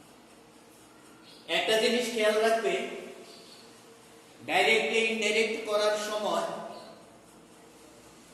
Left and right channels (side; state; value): both; identical; correlation 1.00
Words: একটা জিনিস খেয়াল রাখবে, ডাইরেক্ট ইনডাইরেক্ট করার সময়